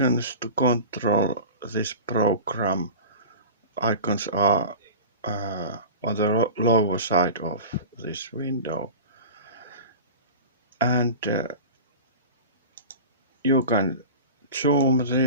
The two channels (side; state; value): both; inverted; correlation -0.34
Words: to control this program. Icons are on the lower side of this window, and you can zoom